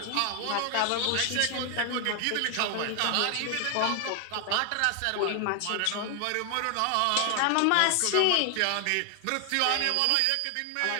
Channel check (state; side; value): different; both; correlation 0.00